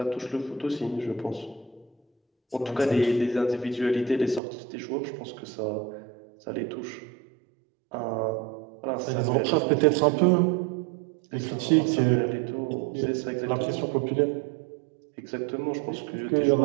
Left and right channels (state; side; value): drops out; left; at 4.4 s